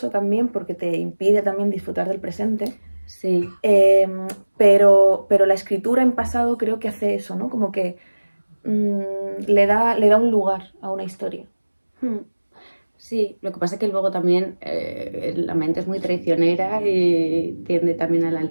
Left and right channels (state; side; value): inverted; both; correlation -1.00